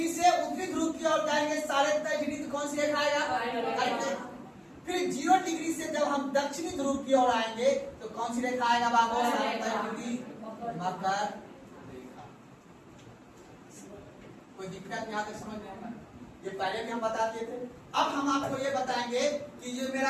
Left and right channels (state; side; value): identical; both; correlation 1.00